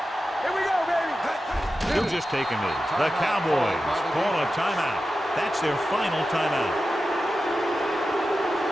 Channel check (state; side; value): normal; both; correlation 0.92